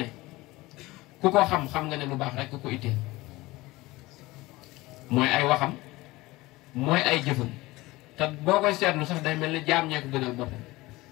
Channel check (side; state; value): right; quieter; 20.1 dB